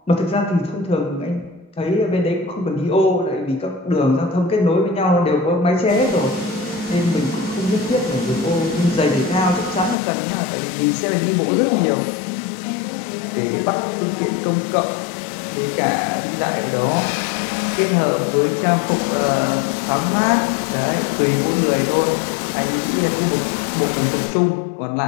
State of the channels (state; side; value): drops out; right; at 10.0 s